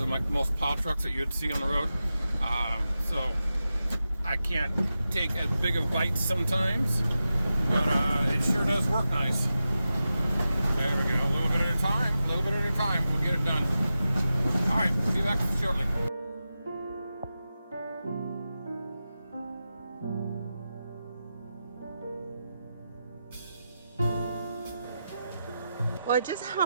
most plow trucks that you'd see on the road. So I can't take as big of bites sometimes, but it sure does work nice. There we go. A little bit at a time. A little bit at a time. We'll get it done. All right. See you back shortly. Well, I just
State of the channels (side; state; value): both; inverted; correlation -0.91